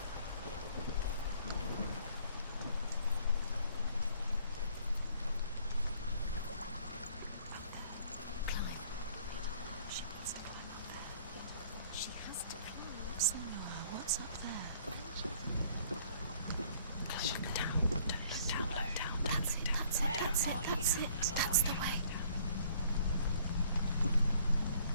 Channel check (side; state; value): both; inverted; correlation -0.59